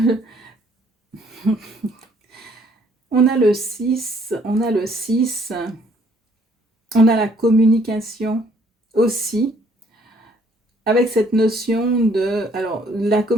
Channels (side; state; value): both; normal; correlation 0.63